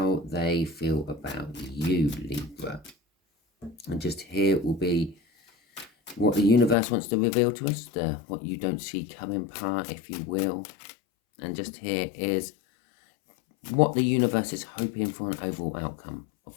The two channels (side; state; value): right; drops out; at 6.8 s